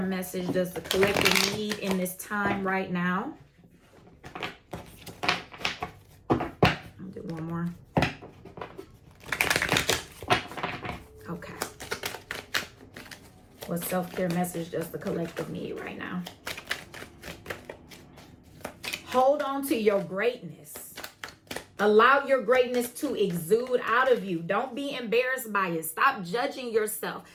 message does the collective need in this time right now? I'll do one more. Okay. What self-care message does the collective need right now? Hold on to your greatness. Allow your greatness to exude out of you. Don't be embarrassed by it. Stop judging yourself.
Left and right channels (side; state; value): both; identical; correlation 1.00